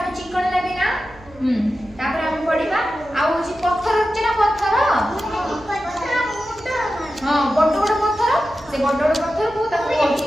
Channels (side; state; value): right; noise; hum, 23 dB below the sound